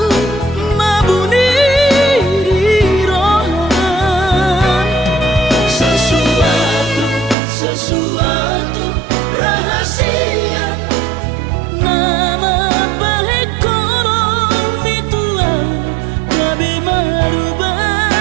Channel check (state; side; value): drops out; left; at 7.4 s